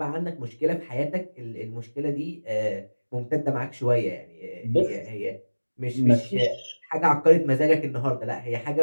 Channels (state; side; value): inverted; both; correlation -1.00